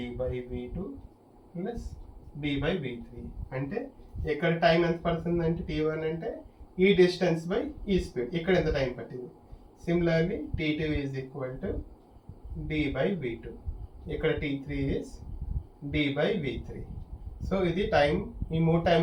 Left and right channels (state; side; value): identical; both; correlation 1.00